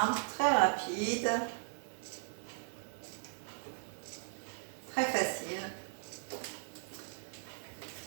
très rapide, très facile.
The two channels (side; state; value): left; silent; 53 dB below the other